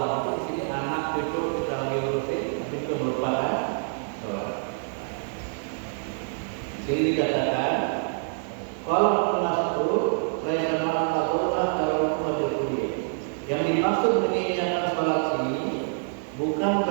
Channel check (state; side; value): silent; left; 61 dB below the other